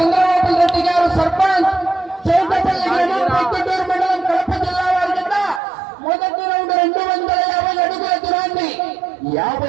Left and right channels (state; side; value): drops out; left; at 5.6 s